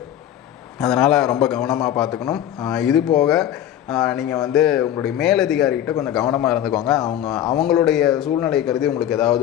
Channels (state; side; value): quieter; right; 11.3 dB